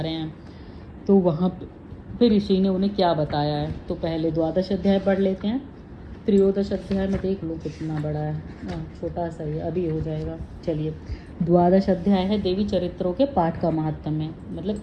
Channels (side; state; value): both; identical; correlation 1.00